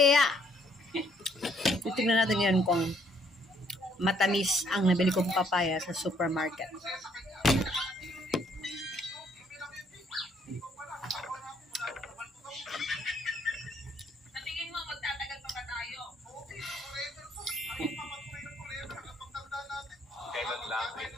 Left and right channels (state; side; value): normal; both; correlation 0.67